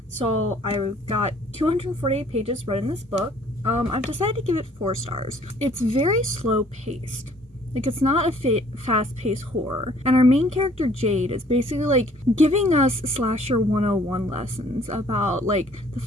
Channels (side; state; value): both; normal; correlation 0.58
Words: So I got 248 pages read in this book. I've decided to give it 4 stars. It's very slow paced. Like, it's not a fast-paced horror. And our main character, Jade, is basically, like, giving us Slasher 101 lessons about, like, the